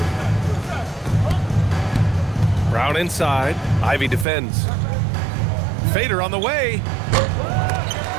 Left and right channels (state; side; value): drops out; left; at 4.2 s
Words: Brown inside. Ivy defends. Fader on the way.